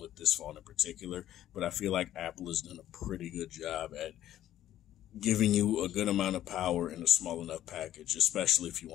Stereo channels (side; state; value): right; quieter; 12.5 dB